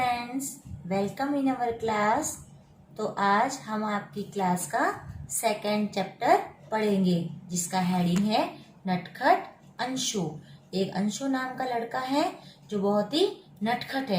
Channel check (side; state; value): both; identical; correlation 1.00